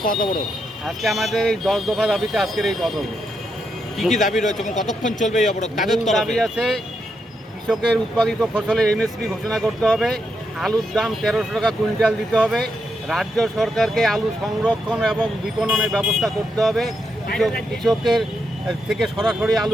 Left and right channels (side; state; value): both; normal; correlation 0.82